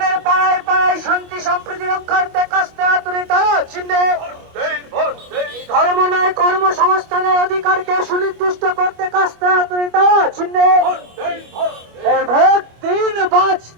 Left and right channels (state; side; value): late; left; 25 ms